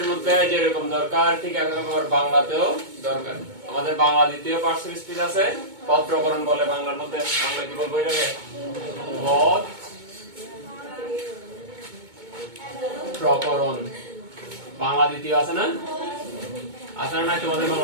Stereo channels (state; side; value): late; left; 2.2 ms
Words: মধ্যে যেরকম দরকার ঠিক একরকম বাংলাতেও দরকার। আমাদের বাংলা দ্বিতীয় পার্সোনাল স্পিচ আছে, পদ প্রকরণ বলে বাংলার মধ্যে। বাংলা কি বলবো এটাকে? পদ প্রকরণ। বাংলা দ্বিতীয় আছে না? আছে না? তোমাদের